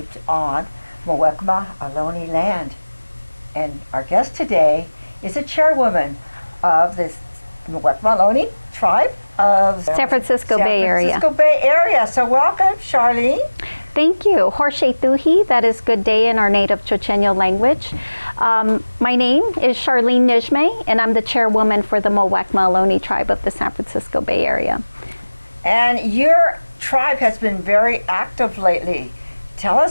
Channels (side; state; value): both; inverted; correlation -1.00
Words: on Muwekma Ohlone land, and our guest today is a chairwoman of this Muwekma Ohlone tribe of San Francisco Bay Area. San Francisco Bay Area. So welcome, Charlene. Thank you. Horshaituhi, that is good day in our native Chochenyo language. My name is Charlene Nijmeh, and I'm the chairwoman for the Muwekma Ohlone tribe of the San Francisco Bay Area. And your tribe has been very active lately. Tell